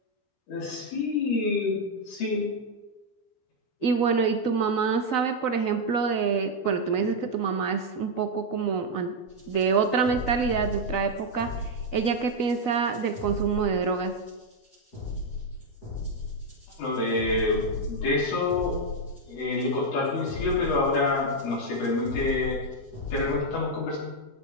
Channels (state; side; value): late; right; 12 ms